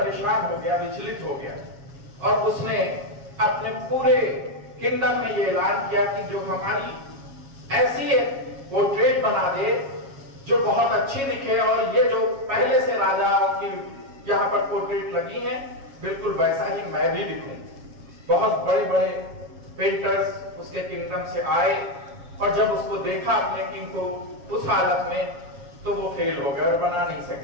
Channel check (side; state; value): left; late; 7.3 ms